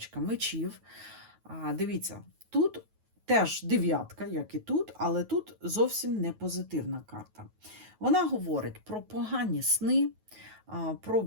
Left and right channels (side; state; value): left; late; 9.3 ms